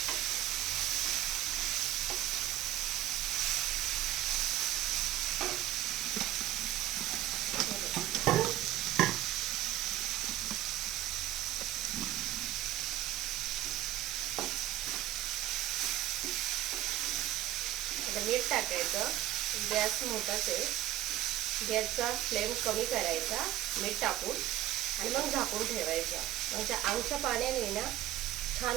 आता मीठ टाकायचं. गॅस मोठाच आहे. गॅसचा फ्लेम कमी करायचा मीठ टाकून आणि मग झाकून ठेवायचा. म्हणजे आमच्या पाण्याने ना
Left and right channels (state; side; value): quieter; left; 14.4 dB